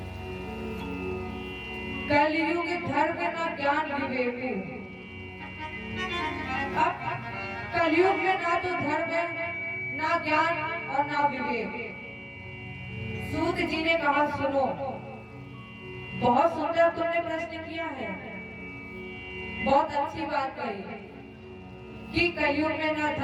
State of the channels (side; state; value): both; identical; correlation 1.00